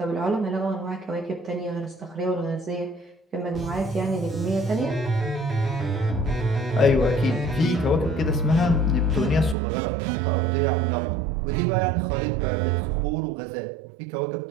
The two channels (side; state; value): left; drops out; at 9.6 s